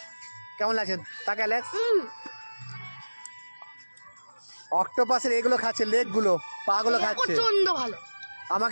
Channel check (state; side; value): inverted; both; correlation -1.00